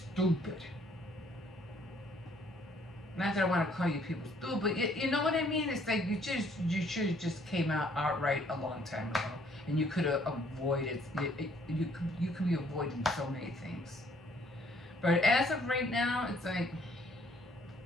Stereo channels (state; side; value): normal; both; correlation 0.63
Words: Not that I want to call you people stupid, but you know what I mean? It's like you should have just came out outright a long time ago, and you could have avoided you could be avoiding so many things. But as of right now, it's like